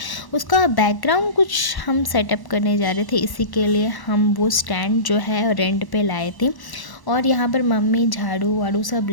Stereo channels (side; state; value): right; late; 1.0 ms